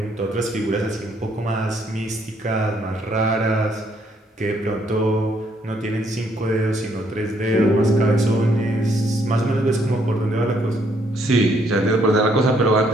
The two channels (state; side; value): normal; both; correlation 0.69